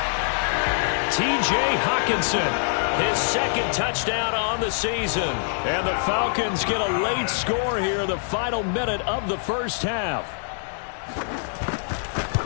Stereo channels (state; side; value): silent; right; digital silence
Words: T.J. Hawkinson, his 2nd touchdown on the season. And the Falcons get a late score here in the final minute of the 1st half.